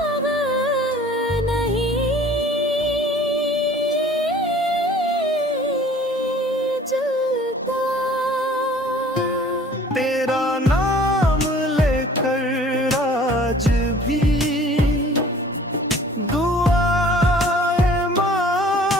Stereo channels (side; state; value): both; normal; correlation 0.50